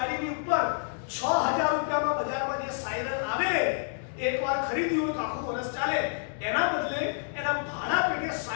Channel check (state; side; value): silent; right; digital silence